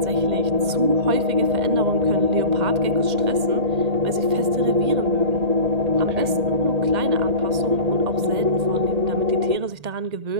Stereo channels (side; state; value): left; late; 1.8 ms